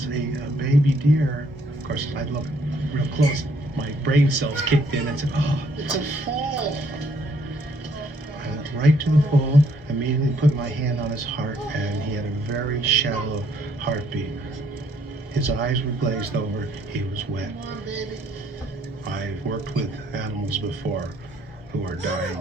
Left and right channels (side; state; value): both; normal; correlation 0.67